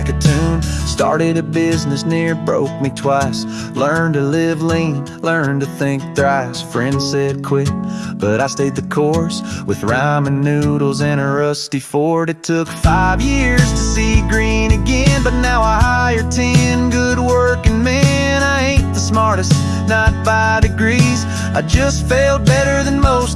a tune. Started a business, near broke me twice. Learned to live lean, learned to think thrice. Friends said quit, but I stayed the course. With ramen noodles and a rusty Ford. It took 5 years to see green again, but now I hire 10 good working men. I ain't the smartest, not by degrees, I just failed better than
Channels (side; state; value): both; identical; correlation 1.00